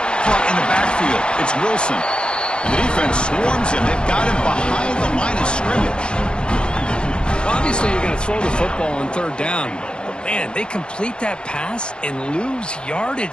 Caught in the backfield, it's Wilson. And the defense swarms him. They've got him behind the line of scrimmage. Obviously, you're going to throw the football on 3rd down. But, man, they complete that pass and lose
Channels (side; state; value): right; late; 0.048 ms